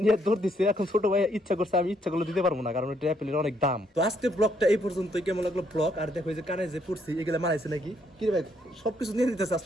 নিয়ে দৌড় দিছে। এখন ছোট ভাই ইচ্ছা করছে, আমি ইচ্ছা করলে দিতে পারবো না, কারণ এটা অ্যাপেলের অনেক দাম। তো আজকে ব্লগটা এই পর্যন্ত। কেমন লাগলো ব্লগ? আর দেখো এই যে কানে যে পড়ছি, এগুলো মারাইছে নাকি কি রে ভাই? সবকিছু নিয়ে নিতেছে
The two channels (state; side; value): normal; both; correlation 0.71